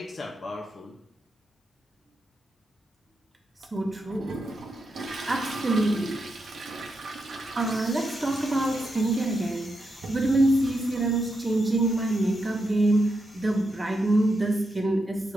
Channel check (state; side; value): normal; both; correlation 0.84